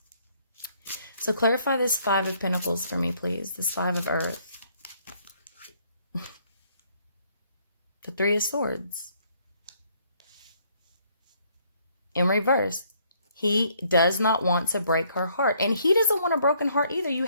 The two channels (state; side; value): inverted; both; correlation -0.66